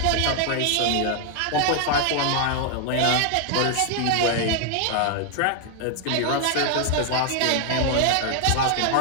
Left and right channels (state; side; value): different; both; correlation 0.00